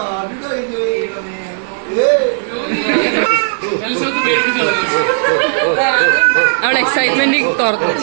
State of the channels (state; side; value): silent; left; 59 dB below the other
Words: അവളെ എക്സൈറ്റ്മെന്റ് തുറന്നു.